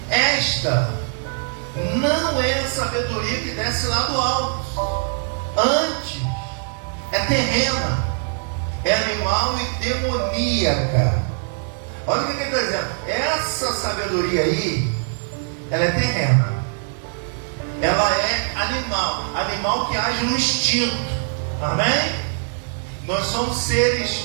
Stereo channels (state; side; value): silent; left; 64 dB below the other